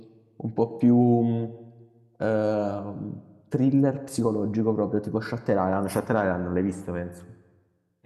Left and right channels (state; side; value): identical; both; correlation 1.00